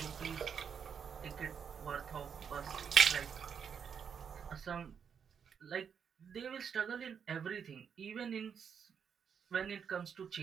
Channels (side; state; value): left; quieter; 7.1 dB